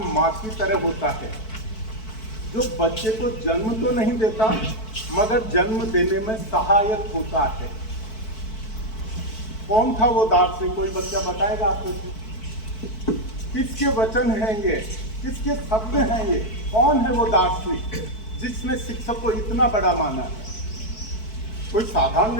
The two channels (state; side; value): late; right; 4.6 ms